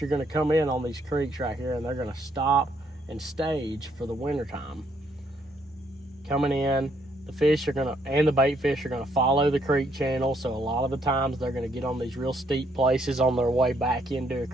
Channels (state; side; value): normal; both; correlation 0.71